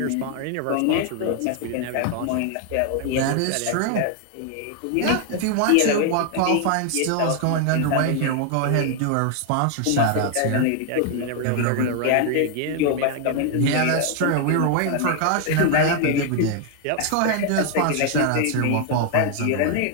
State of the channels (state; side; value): different; both; correlation 0.00